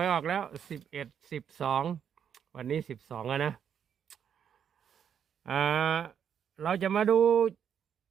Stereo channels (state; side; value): quieter; left; 8.3 dB